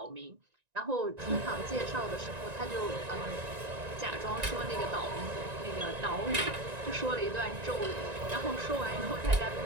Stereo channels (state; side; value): late; left; 1.9 ms